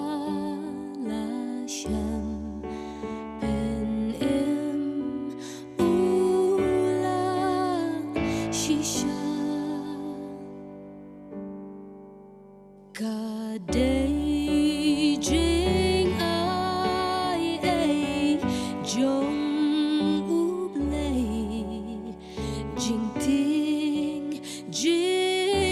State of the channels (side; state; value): both; identical; correlation 1.00